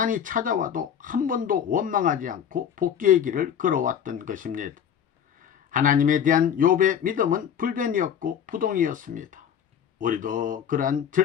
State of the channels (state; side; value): quieter; right; 8.6 dB